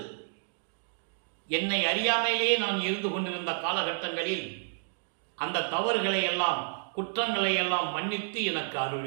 என்னை அறியாமலேயே நான் இருந்து கொண்டிருந்த காலகட்டங்களில் அந்த தவறுகளை எல்லாம், குற்றங்களை எல்லாம் மன்னித்து எனக்கு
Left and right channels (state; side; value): silent; left; 58 dB below the other